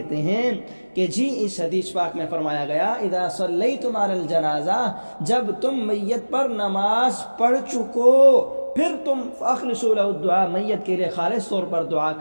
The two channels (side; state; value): both; inverted; correlation -1.00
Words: ہیں کہ جی اس حدیث پاک میں فرمایا گیا اذا صلیتم علی الجنازہ، جب تم میت پر نماز پڑھ چکو پھر تم فاخلصوا له الدعاء، میت کے لیے خالص طور پر دعا